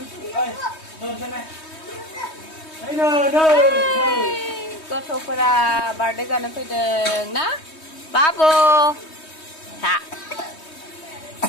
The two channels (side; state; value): right; late; 3.2 ms